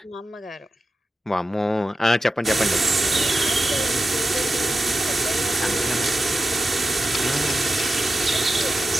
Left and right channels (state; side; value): normal; both; correlation 0.91